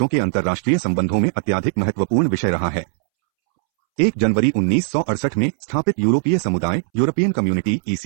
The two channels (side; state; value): left; silent; 66 dB below the other